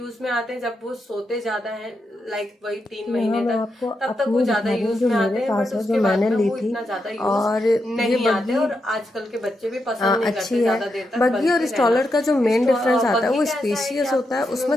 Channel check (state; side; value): normal; both; correlation 0.85